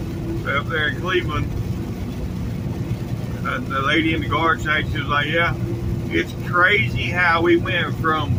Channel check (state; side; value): identical; both; correlation 1.00